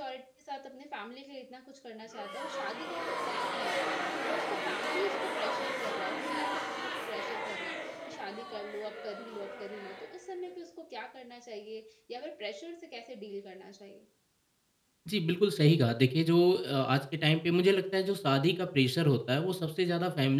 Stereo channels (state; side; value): identical; both; correlation 1.00